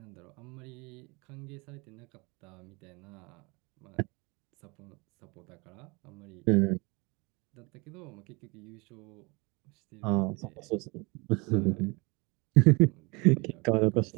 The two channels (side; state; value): left; quieter; 27.3 dB